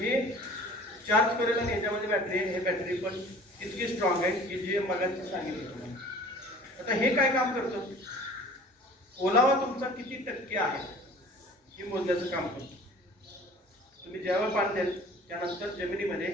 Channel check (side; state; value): both; normal; correlation 0.46